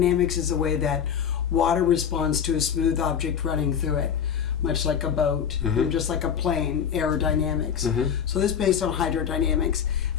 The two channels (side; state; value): right; quieter; 8.0 dB